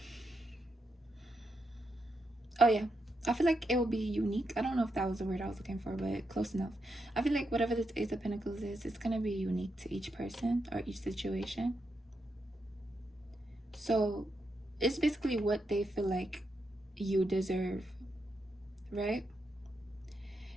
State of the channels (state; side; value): normal; both; correlation 0.83